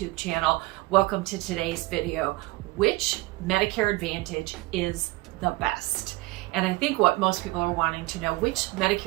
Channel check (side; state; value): left; quieter; 21.0 dB